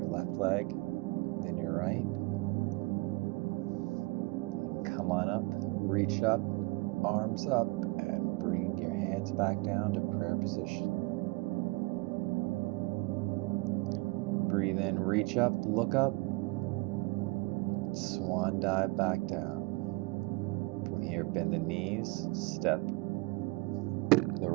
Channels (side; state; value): left; quieter; 25.7 dB